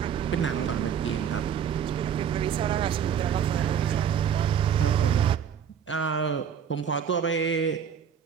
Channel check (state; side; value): quieter; left; 8.1 dB